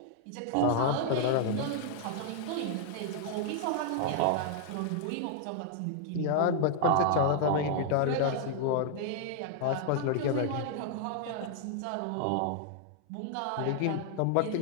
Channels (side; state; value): both; different; correlation 0.00